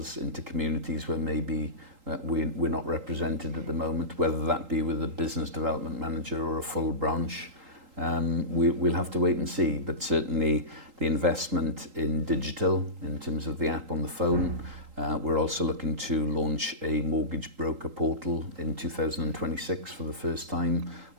into communities where maybe we're not represented at the moment, whether that be with a business development manager or a full branch. We'll have to wait and see, but certainly the investment in digital in terms of the app on the phone. We're also looking to launch a mortgage broker portal in 2026 for the first time,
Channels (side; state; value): left; late; 3.8 ms